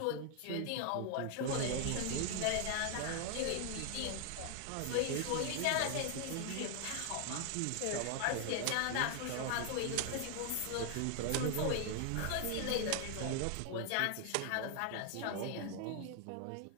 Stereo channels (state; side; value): different; both; correlation 0.00